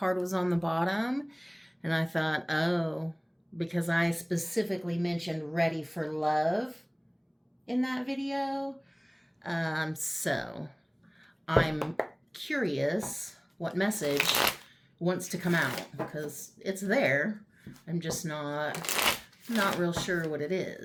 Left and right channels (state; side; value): identical; both; correlation 1.00